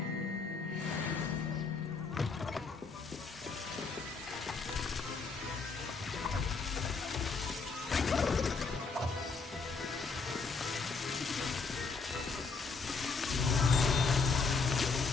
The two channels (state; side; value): quieter; right; 4.6 dB